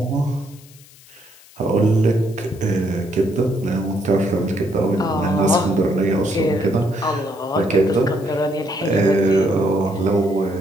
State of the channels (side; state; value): left; noise; hiss, 24 dB below the sound